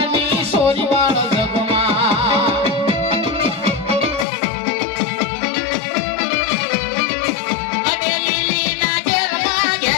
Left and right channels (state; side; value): drops out; right; at 4.2 s